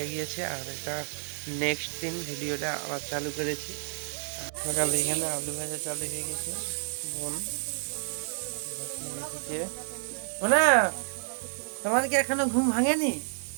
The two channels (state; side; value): silent; left; digital silence